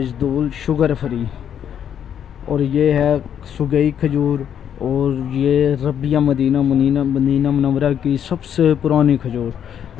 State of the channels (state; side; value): quieter; right; 9.0 dB